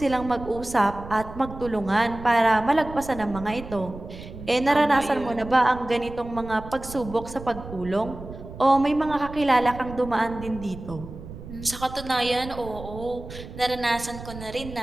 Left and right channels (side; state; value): right; noise; rumble, 13 dB below the sound